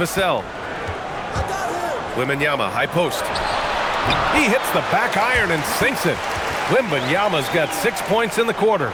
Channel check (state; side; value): identical; both; correlation 1.00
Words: Wembanyama, high post. He hits the back iron and sinks it. Wembanyama's got 6 points in the quarter.